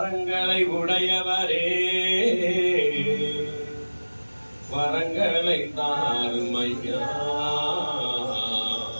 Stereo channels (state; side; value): inverted; both; correlation -1.00